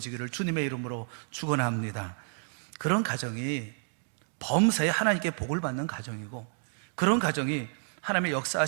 주님의 이름으로 축원합니다. 그런 가정이 범사에 하나님께 복을 받는 가정이고, 그런 가정이 하나님의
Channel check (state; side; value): silent; left; 58 dB below the other